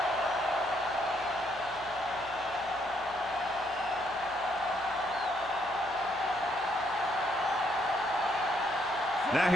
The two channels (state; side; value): noise; right; hum, 23 dB below the sound